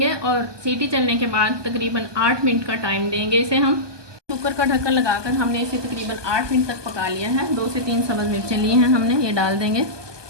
और सीटी चलने के बाद तकरीबन 8 मिनट का टाइम देंगे इसे हम। कुकर का ढक्कन लगाकर हमने इसे तकरीबन 8 मिनट तक पका लिया है। 2 से 3 सब्ज़ मिर्चें ली हैं हमने, ये डाल देंगे।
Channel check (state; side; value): late; left; 1.2 ms